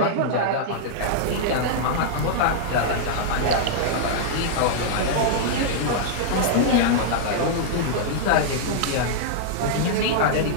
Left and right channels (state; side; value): different; both; correlation -0.02